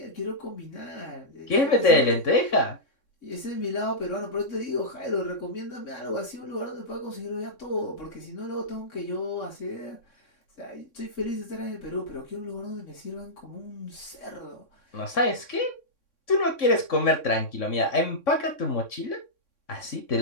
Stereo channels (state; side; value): late; right; 3.6 ms